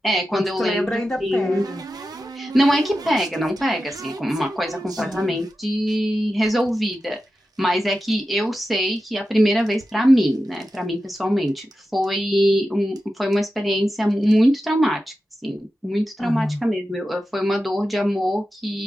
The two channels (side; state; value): both; normal; correlation 0.91